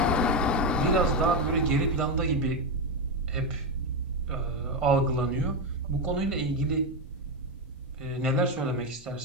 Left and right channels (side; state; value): both; normal; correlation 0.10